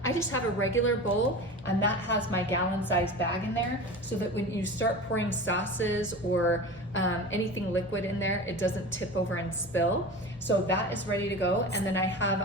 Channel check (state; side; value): normal; both; correlation 0.32